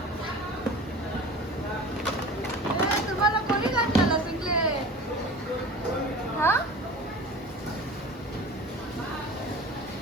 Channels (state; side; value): normal; both; correlation 0.37